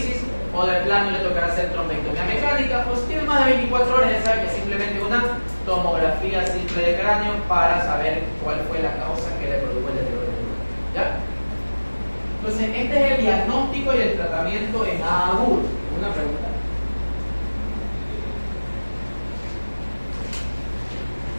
o de plano le tocará hacer trombectomía mecánica. Pues si tiene más de 24 horas, ya sabe que es simplemente una tomografía simple de cráneo para saber cuál fue la causa que le produjo el deterioro del neurona. ¿Ya? Entonces, este es el diagnóstico y el tratamiento en agudo. Una pregunta.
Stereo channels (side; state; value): both; inverted; correlation -1.00